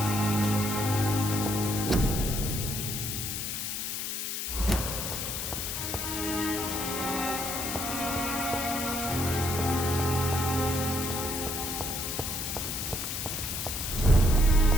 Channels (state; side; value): noise; left; hiss, 3 dB below the sound